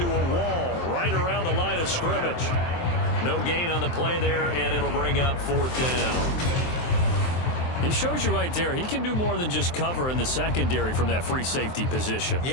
a wall right around the line of scrimmage. No gain on the play there, and it'll bring up fourth down. He shows you right there, he can do more than just cover in the secondary from that free safety position.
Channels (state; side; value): late; right; 23 ms